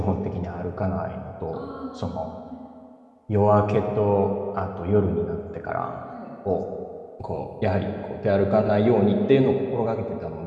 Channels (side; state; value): both; identical; correlation 1.00